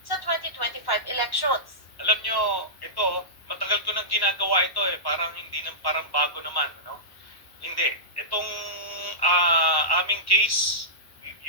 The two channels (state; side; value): late; right; 1.1 ms